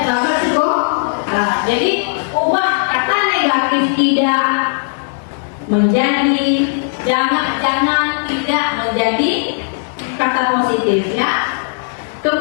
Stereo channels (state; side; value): silent; right; 60 dB below the other